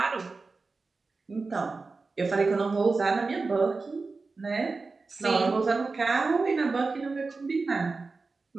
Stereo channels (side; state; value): left; quieter; 4.0 dB